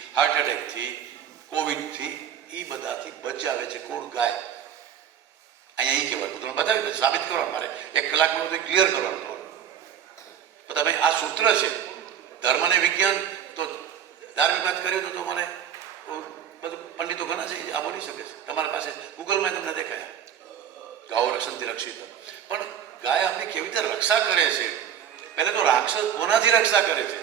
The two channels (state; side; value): quieter; left; 9.1 dB